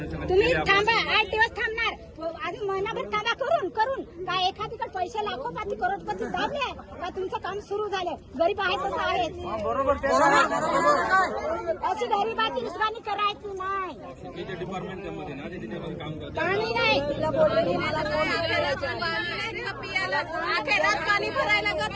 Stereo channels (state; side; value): identical; both; correlation 1.00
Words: तुम्ही थांबा, 8 दिवस थांबणार, अजून महिनाभर थांबा. करून काय एखादीकडे पैसे लाखोपाती करोडपती दाबले का तुमचं काम सुरू झालं? गरीब आहे तसं आहे. बरोबर. अशी गरीबाची दुश्मनी करायची नाही. डिपार्टमेंट मध्ये ना ते त्याच्यामध्ये काम करतात. पाणी नाही तुला बोलले मला पाणी भरायला